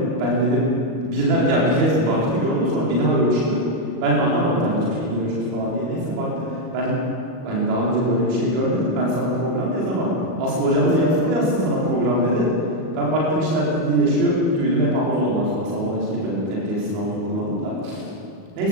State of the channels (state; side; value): late; left; 38 ms